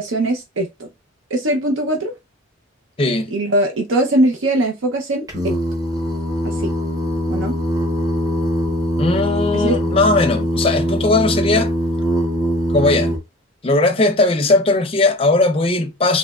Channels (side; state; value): both; normal; correlation 0.42